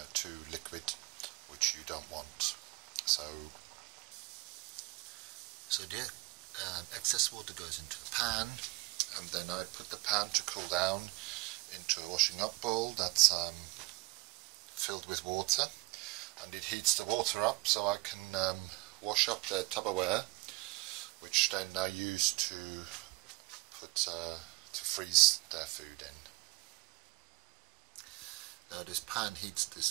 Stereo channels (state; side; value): quieter; left; 24.1 dB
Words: too liquid, which you don't want. So the excess water goes into a pan, and then I put the pan to cool down into a washing up bowl that's filled with water, and it heats the water up so I can wash up the Tupperware, which then I use to freeze their food in. Now this pan heats